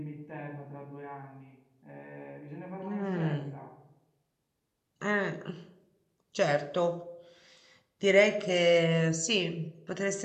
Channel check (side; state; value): both; identical; correlation 1.00